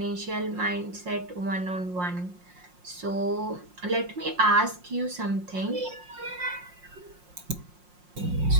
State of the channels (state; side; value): late; left; 5.6 ms